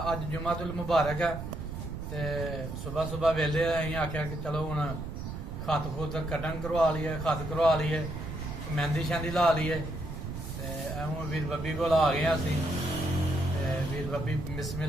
अज जुमातुल मुबारक है ते सुबह सुबह वेले अं आख्या कि चलो हुण खत खुत कटन करवा लीए खत करवा लीए मेहंदी शहंदी ला लीए ते हूँ वीर बब्बी को आ गए असी वीर बब्बी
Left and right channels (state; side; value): noise; right; rumble, 7 dB below the sound